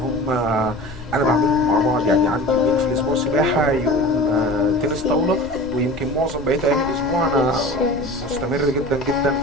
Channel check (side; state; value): left; noise; rumble, 16 dB below the sound